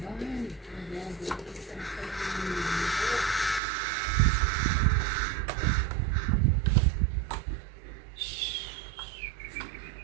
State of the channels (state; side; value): drops out; left; at 3.6 s